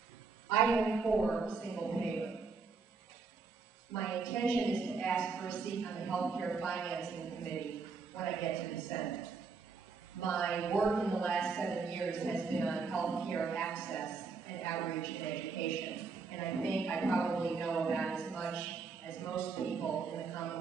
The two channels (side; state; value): left; quieter; 4.8 dB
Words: I am for single payer. My intention is to ask for a seat on the Healthcare Financing Committee when I get to the Senate. My work in the last 7 years has been on healthcare access and outreach and education. And I think I probably know about as much as most people in the